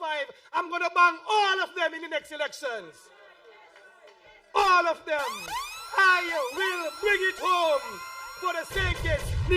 I'm going to bang all of them in the next elections. All of them. I will bring it home for the St.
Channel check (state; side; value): identical; both; correlation 1.00